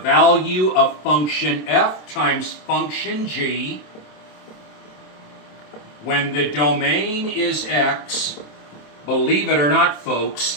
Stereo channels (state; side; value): late; right; 27 ms